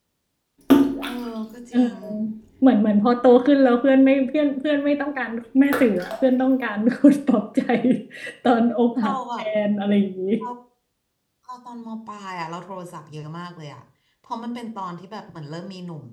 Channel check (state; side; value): identical; both; correlation 1.00